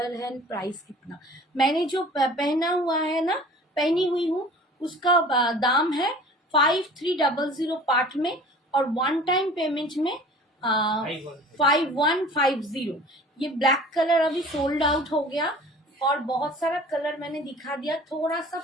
है, प्राइस कितना? मैंने जो पहना हुआ है ना, पहनी हुई हूँ, उसका दाम है 5300 पार्ट में, और वन टाइम पेमेंट में 5150। ये ब्लैक कलर अभी सोल्ड आउट हो गया, और बहुत सारा कलर मैंने दिखा दिया, थोड़ा सा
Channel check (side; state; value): both; normal; correlation 0.45